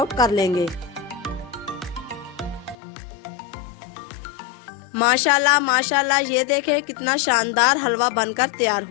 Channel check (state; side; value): drops out; right; at 2.8 s